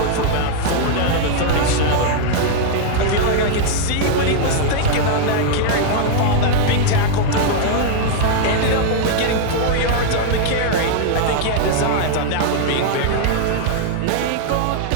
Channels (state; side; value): different; both; correlation 0.00